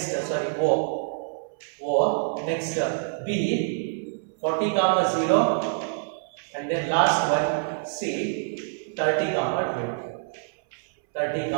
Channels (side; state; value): left; silent; 61 dB below the other